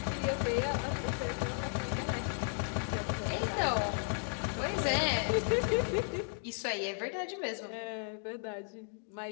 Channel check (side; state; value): right; silent; 55 dB below the other